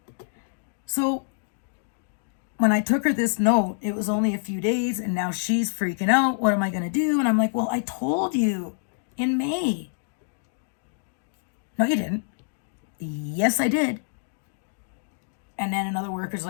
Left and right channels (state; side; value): silent; right; digital silence